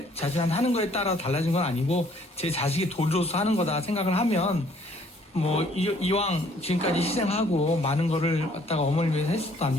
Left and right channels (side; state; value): both; normal; correlation 0.61